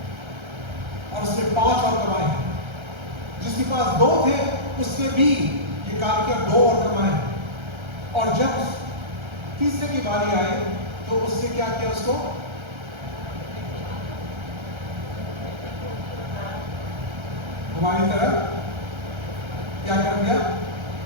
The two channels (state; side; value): late; left; 1.3 ms